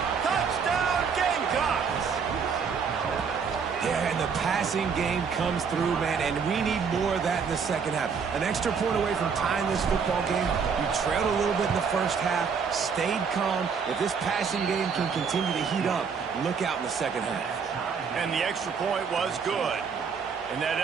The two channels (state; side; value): quieter; left; 6.0 dB